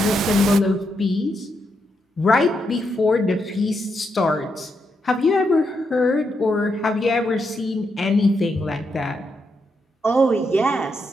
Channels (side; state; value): both; normal; correlation 0.82